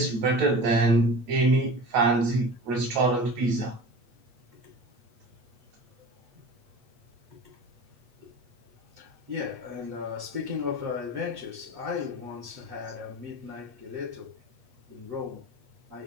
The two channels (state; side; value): late; left; 8.3 ms